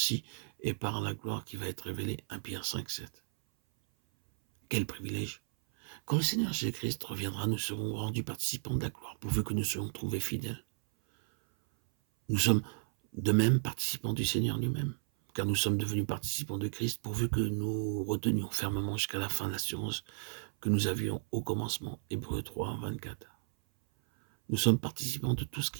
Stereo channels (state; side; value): silent; left; 55 dB below the other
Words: est par la gloire qui va être révélée. 1 Pierre 5, 7. Quel privilège! Quand le Seigneur Jésus-Christ reviendra, nous serons rendus participants de la gloire, pourvu que nous soyons trouvés fidèles. Nous sommes de même participants du Seigneur lui-même, car nous sommes devenus participants de Christ, pourvu que nous retenions fermement jusqu'à la fin l'assurance que nous avions au commencement. Hébreux 3, 24. Nous sommes participants de tout ce